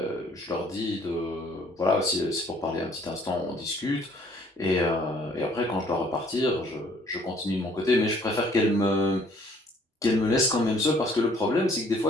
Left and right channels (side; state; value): both; normal; correlation 0.60